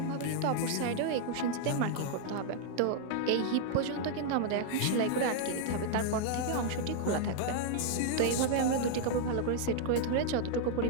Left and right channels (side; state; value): both; different; correlation 0.00